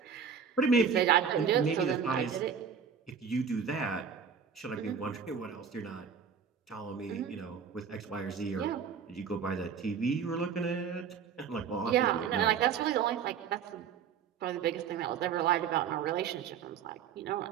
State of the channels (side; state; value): left; quieter; 6.9 dB